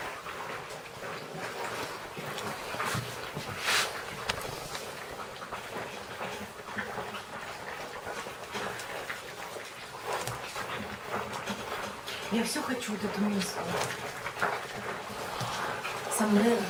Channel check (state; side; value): identical; both; correlation 1.00